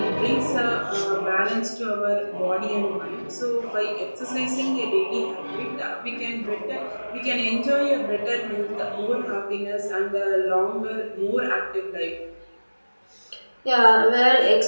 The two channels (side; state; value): both; inverted; correlation -1.00